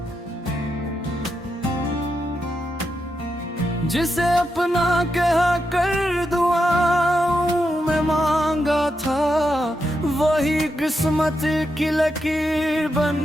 जिसे अपना कहा कर दुआओं में मांगा था, वही किस्मत की लकीर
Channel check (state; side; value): normal; both; correlation 0.85